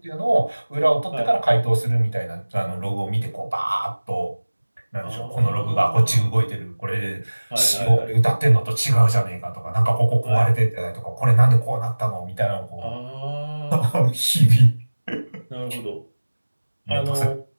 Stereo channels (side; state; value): both; inverted; correlation -1.00